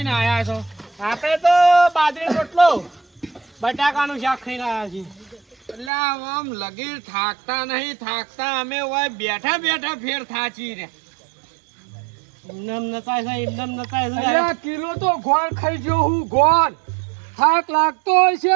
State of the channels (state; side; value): drops out; left; at 5.9 s